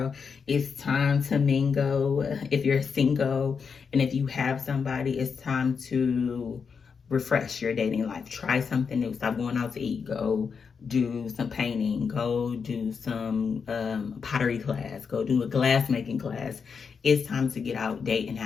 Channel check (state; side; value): quieter; right; 5.9 dB